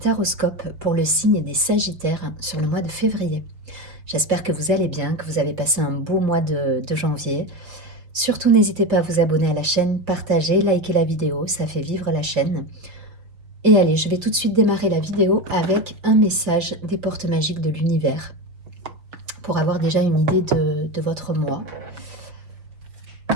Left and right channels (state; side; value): late; left; 5.7 ms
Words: pour le signe des Sagittaires sur le mois de février. J'espère que vous allez bien, que vous avez passé un beau mois de janvier. Surtout n'hésitez pas à vous abonner à la chaîne, partager, liker la vidéo, ça fait vivre la chaîne. Et allez, je vais tout de suite démarrer la vidéo avec un message des portes magiques de l'univers pour avoir déjà une idée de votre mois.